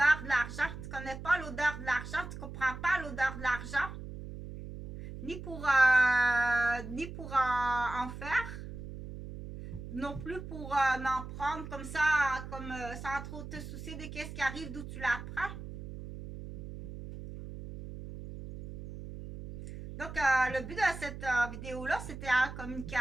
de l'argent, tu connais pas l'odeur de l'argent, tu comprends pas l'odeur de l'argent, ni pour en faire, non plus pour en prendre comme ça, comme sans trop te soucier de qu'est-ce qui arrive, d'où tu la prends. Donc, le but de cette vidéo-là, c'était la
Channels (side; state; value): right; noise; hum, 10 dB below the sound